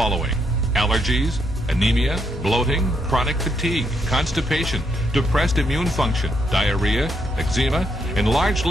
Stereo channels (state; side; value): normal; both; correlation 0.77